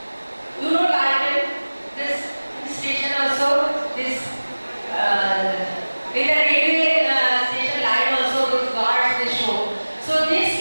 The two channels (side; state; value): both; inverted; correlation -1.00